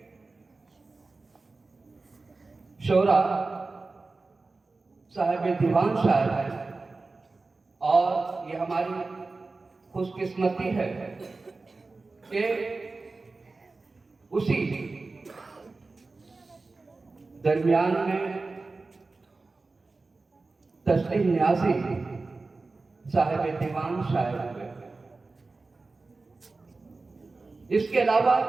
शोरा साहिब दीवान शायर है, और ये हमारी खुशकिस्मती है कि उसी दरमियान में तस्लीम न्याज़ी साहिब दीवान शायर हुए। इसके अलावा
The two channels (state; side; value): quieter; left; 3.7 dB